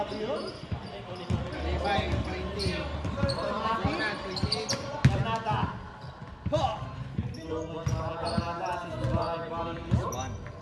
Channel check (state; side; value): identical; both; correlation 1.00